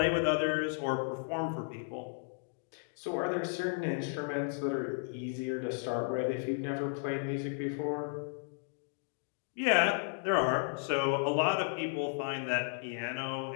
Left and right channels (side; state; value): right; silent; 55 dB below the other